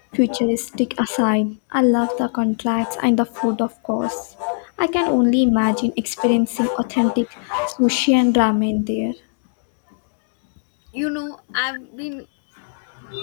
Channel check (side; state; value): right; silent; digital silence